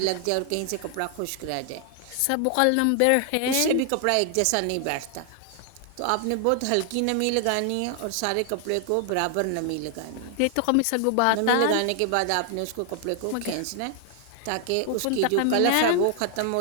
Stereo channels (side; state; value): both; different; correlation 0.00